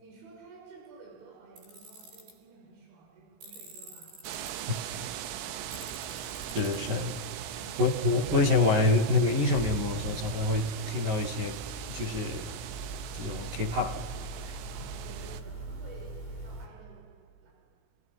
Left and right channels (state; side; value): late; left; 19 ms